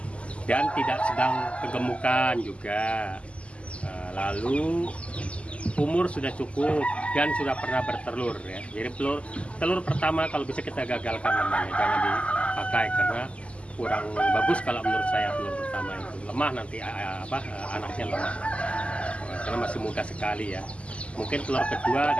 dan tidak sedang kegemukan juga. Lalu umur sudah cukup dan sudah pernah bertelur ya. Jadi telur pertama kalau bisa kita gagalkan namanya, jangan dipakai karena kurang bagus kalau menurut saya. Telur pertama itu lemah nanti anaknya lemah karena masih muda sekali ya. Mungkin telur kedua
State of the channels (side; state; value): right; late; 0.058 ms